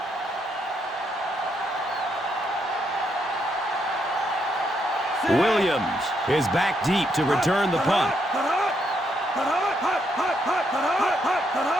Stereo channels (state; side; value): normal; both; correlation 0.76